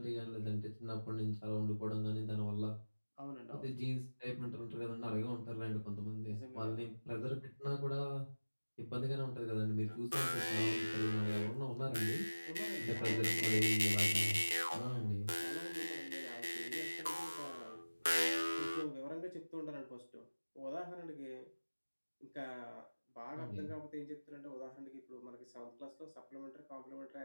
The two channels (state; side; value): inverted; both; correlation -1.00